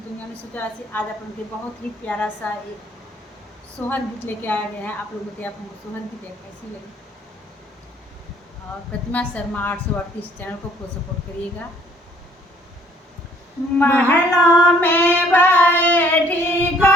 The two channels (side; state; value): both; normal; correlation 0.61